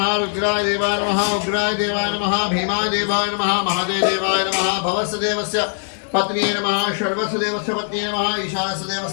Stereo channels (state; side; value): silent; right; 65 dB below the other